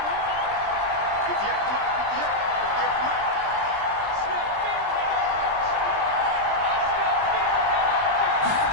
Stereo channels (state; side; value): late; left; 20 ms